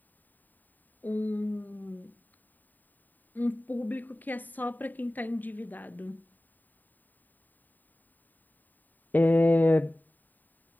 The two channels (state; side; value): late; right; 0.087 ms